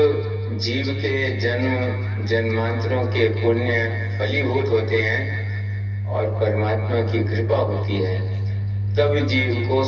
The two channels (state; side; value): identical; both; correlation 1.00